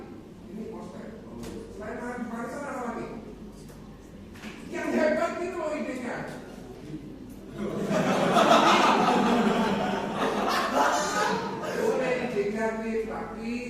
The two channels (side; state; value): both; identical; correlation 1.00